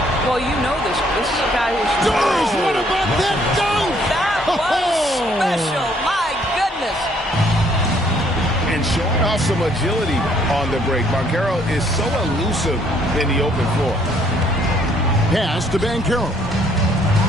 Well, you know this. This is a guy who's... Doris, what about that dunk? That was special. My goodness. And showing off some agility on the break. Banchero is so elusive in the open floor. Pass to Banchero.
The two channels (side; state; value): both; normal; correlation 0.65